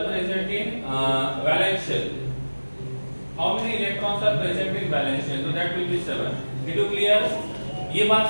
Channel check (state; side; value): inverted; both; correlation -1.00